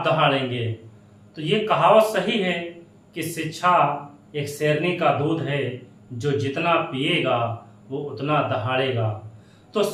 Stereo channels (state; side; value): identical; both; correlation 1.00